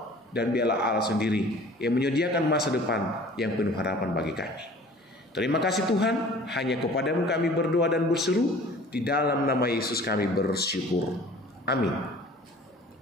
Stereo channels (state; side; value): normal; both; correlation 0.48